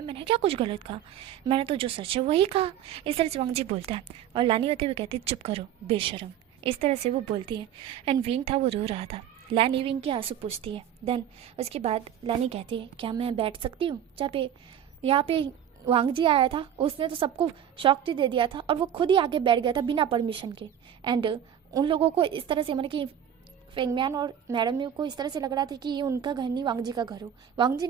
मैंने क्या कुछ गलत कहा, मैंने तो जो सच है वही कहा। इस तरह से वांगजी बोलता है और लानी होते हुए कहती है चुप करो बेशरम। इस तरह से वो बोलती है। एंड विंग था वो रो रहा था। लानी विंग के आंसू पूछती है। देन उसके बाद लानी कहती है क्या मैं बैठ सकती हूँ जहाँ पे यहाँ पे वांगजी आया था, उसने तो सबको शॉक दे दिया था और वो खुद ही आगे बैठ गया था बिना परमिशन के। एंड उन लोगों को इस तरह से मतलब कि फेंगम्यान और मैडम म्यू को इस तरह से लग रहा था कि ये उनका घर नहीं वांगजी का घर हो। वांगजी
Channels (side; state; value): left; quieter; 9.8 dB